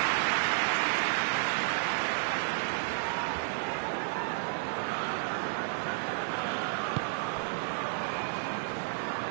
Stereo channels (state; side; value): silent; left; digital silence